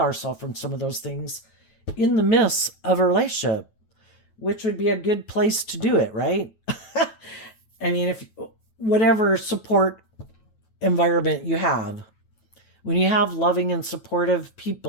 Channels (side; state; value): right; late; 9.3 ms